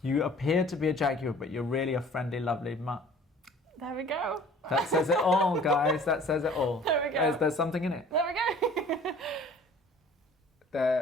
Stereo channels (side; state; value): both; normal; correlation 0.50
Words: appear to be a jaguar, but you're really a friendly, lovely mutt. There we go. That says it all, guys. That says it all. There we go. There's something in it. There we go.